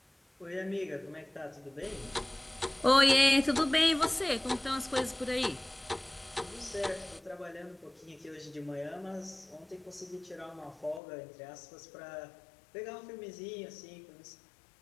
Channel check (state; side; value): drops out; right; at 11.0 s